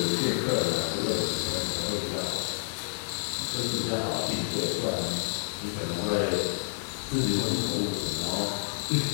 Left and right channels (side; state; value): right; silent; 58 dB below the other